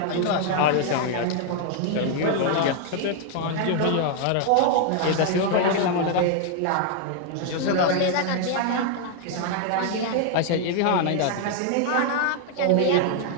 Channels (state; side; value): different; both; correlation 0.00